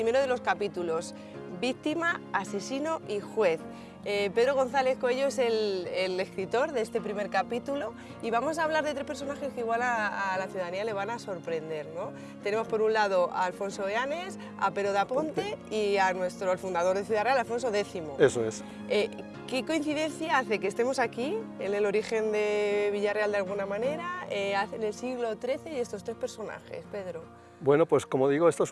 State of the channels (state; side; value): identical; both; correlation 1.00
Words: de los capítulos, Víctima, asesino y juez. Pedro González Coello es el escritor de este primer capítulo y vamos a hablar de tres personajes que igual a la ciudadanía le van a sorprender, ¿no? Tenemos por un lado a Alfonso Eanes, a Pero de Aponte y al fundador de Ciudad Real, Alfonso X. Eso es. ¿Qué coincidencia hace que estemos aquí, en el origen de Villarreal de alguna manera, en el siglo XIII y estos tres personajes, Pedro? Bueno, pues como digo, esto